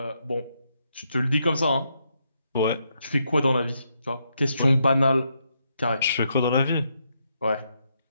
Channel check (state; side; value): inverted; both; correlation -0.79